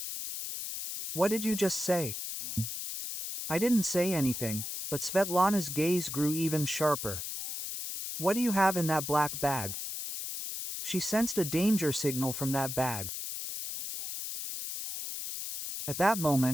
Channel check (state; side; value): noise; left; hiss, 6 dB below the sound